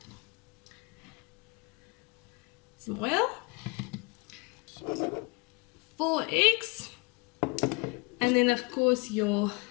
some oil, 4 eggs, and then of course your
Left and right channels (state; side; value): quieter; right; 28.5 dB